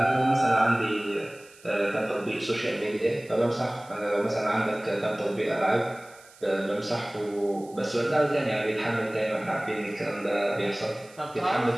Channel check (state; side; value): noise; right; hiss, 24 dB below the sound